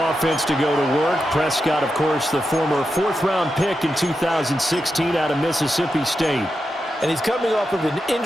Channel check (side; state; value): both; normal; correlation 0.88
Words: to go to work. Prescott, of course, the former 4th-round pick in 2016 out of Mississippi State. And he's coming off of an